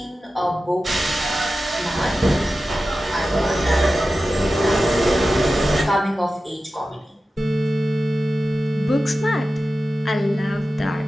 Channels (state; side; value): normal; both; correlation 0.94